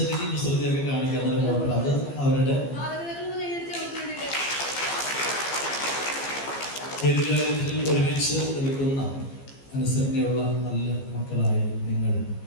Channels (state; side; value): late; right; 15 ms